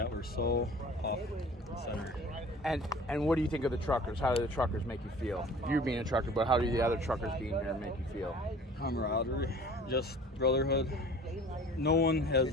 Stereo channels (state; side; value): normal; both; correlation 0.46